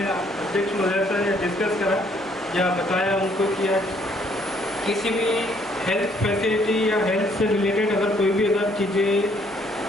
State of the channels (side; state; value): both; normal; correlation 0.66